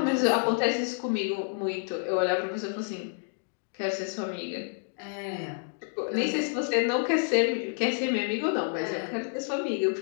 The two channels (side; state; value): right; silent; 57 dB below the other